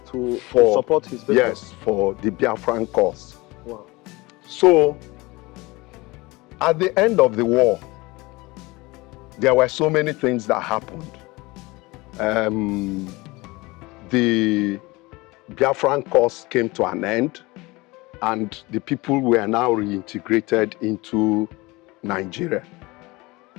to support his business. Yes, for the Biafran cause. Wow. So, at the end of the war, there were so many things that happened. The Biafran cause came to an end, and the people were now reintegrated into Nigeria.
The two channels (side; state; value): right; quieter; 22.7 dB